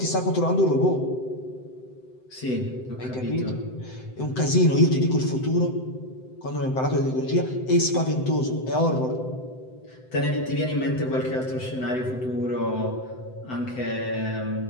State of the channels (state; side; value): late; right; 7.8 ms